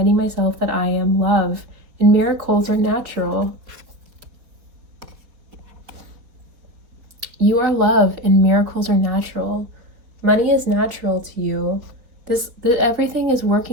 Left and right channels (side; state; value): left; late; 4.4 ms